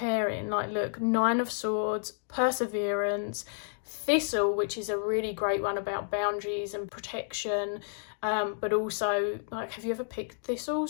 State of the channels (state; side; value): silent; right; digital silence